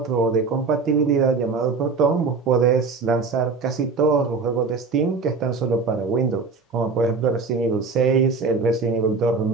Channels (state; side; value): quieter; left; 4.5 dB